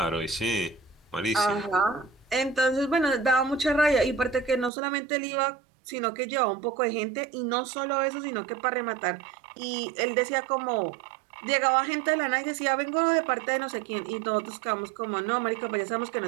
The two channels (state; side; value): drops out; left; at 4.7 s